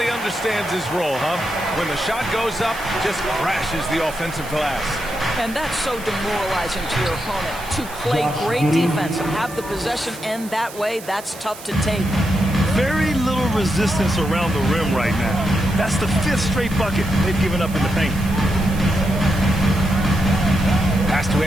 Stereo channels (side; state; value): right; noise; hiss, 16 dB below the sound